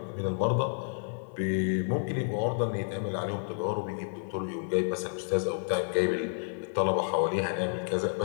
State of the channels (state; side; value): silent; right; 58 dB below the other